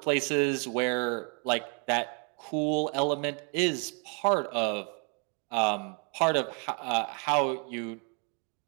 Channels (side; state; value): left; quieter; 37.3 dB